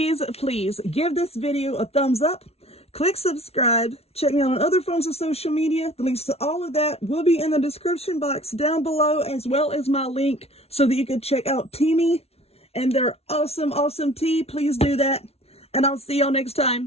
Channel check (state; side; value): late; right; 0.30 ms